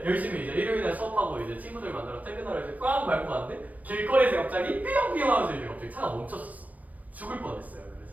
열심히 이제 일요일날 수업하고 이제 친구들 만나러 퇴근하러 이제 꽝 밟고 갔는데 길거리에서 갑자기 삐용삐용 하면서 이제 갑자기 차가 멈췄었어. 죽을 뻔했어요.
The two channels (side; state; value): left; late; 0.073 ms